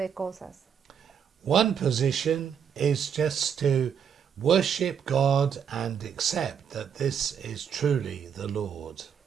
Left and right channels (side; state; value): left; quieter; 7.7 dB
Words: cosas. One position is just to worship God and accept that this is truly the Lord.